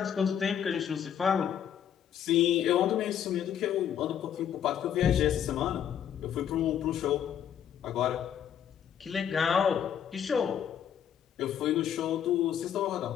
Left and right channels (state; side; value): quieter; right; 9.2 dB